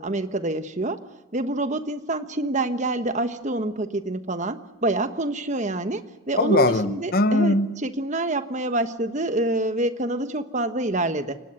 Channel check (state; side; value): normal; both; correlation 0.25